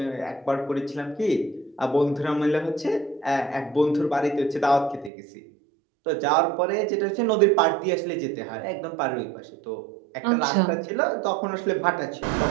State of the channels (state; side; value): drops out; left; at 5.1 s